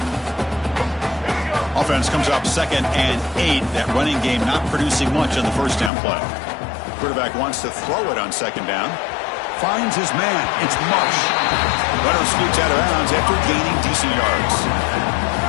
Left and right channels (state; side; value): drops out; right; at 5.9 s